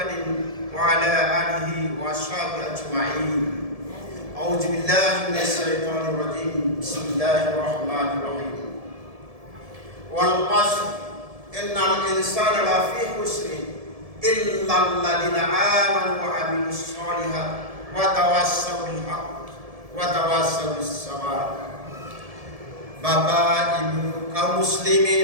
wa ala alihi wa ashabihi ajma'in. A'udzu billahi minasyaitonir rajim. Bismillahirrahmanirrahim. Wal 'ashr innal insana lafi khusrin illa alladziina aamanu wa 'amilus shalihaati wa tawassaw bil haqq wa tawassaw bis sabr. Bapak, Ibu, kaum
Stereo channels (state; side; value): late; left; 1.7 ms